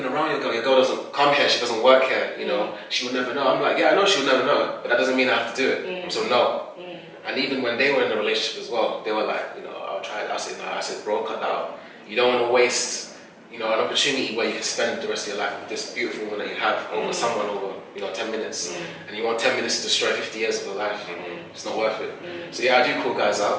around your girl. Your girl doesn't come here. She doesn't work here. She will never know. I'm like, yeah, I know she will never know, but that doesn't mean I have to do it. So no. And even when they were in a relationship as well, they were like, I'll try it. I said no. I said, bro, cut that out. You don't want to waste an opportunity where you can spend the rest of your life with this beautiful woman that you have over someone over 10 minutes, and you want 10 minutes to destroy 50 years of your life. It's not worth it. So yeah, I do call guys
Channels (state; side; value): identical; both; correlation 1.00